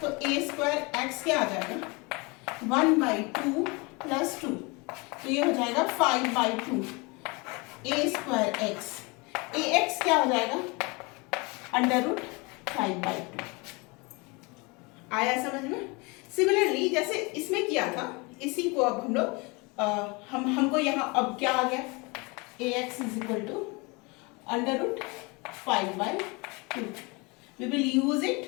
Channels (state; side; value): quieter; right; 27.6 dB